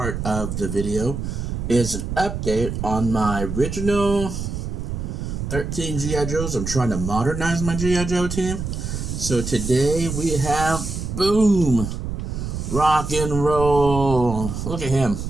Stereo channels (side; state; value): right; noise; rumble, 5 dB below the sound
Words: of the video is an update on my original 13 GI Joes. I'm trying to modernize my GI Joe team. So today we have, boom, rock and roll. Look at him.